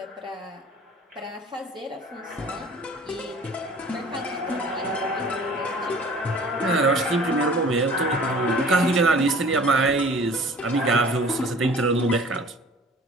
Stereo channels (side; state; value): both; normal; correlation 0.47